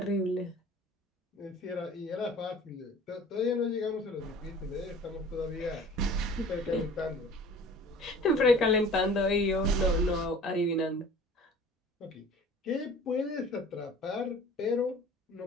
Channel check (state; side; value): normal; both; correlation 0.45